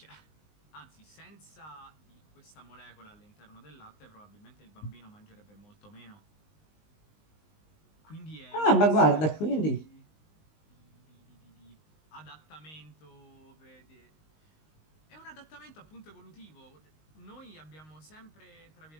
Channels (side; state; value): right; late; 19 ms